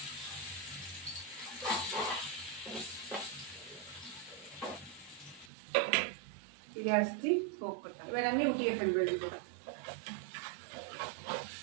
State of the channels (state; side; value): drops out; left; at 5.5 s